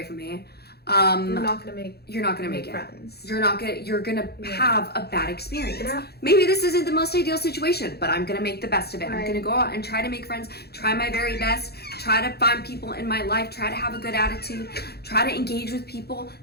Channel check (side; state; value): right; late; 0.46 ms